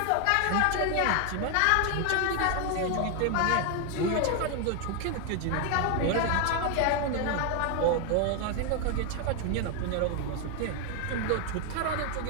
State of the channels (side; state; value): both; different; correlation 0.01